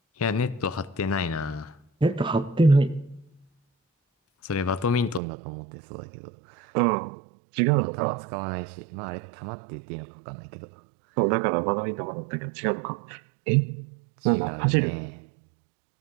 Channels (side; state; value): left; drops out; at 5.2 s